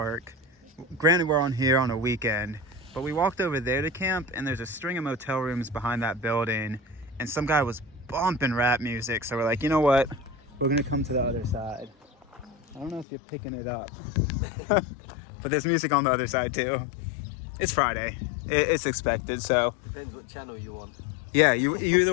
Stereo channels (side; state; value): right; drops out; at 13.1 s